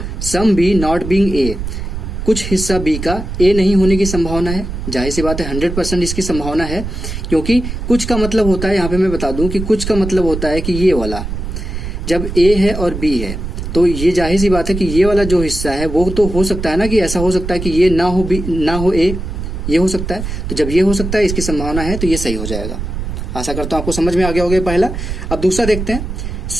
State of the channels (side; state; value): right; noise; rumble, 6 dB below the sound